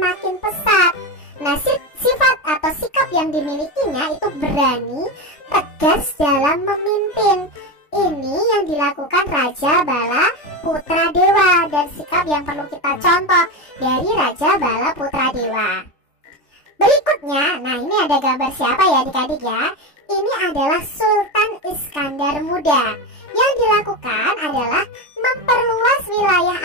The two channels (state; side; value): late; right; 3.4 ms